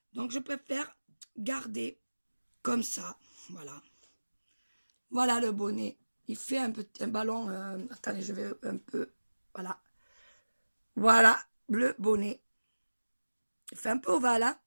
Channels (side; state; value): both; inverted; correlation -1.00